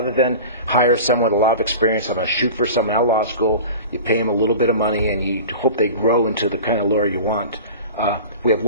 than hire someone with a lot of experience, I'm going to shoot for someone out of law school. You pay them a little bit of money, and you hope they grow into the kind of lawyer you want. We have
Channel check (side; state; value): both; inverted; correlation -0.35